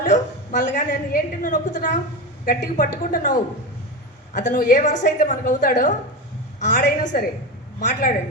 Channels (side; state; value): both; normal; correlation 0.21